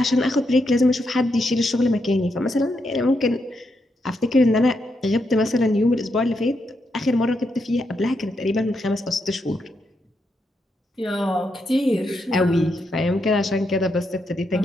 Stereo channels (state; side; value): normal; both; correlation 0.81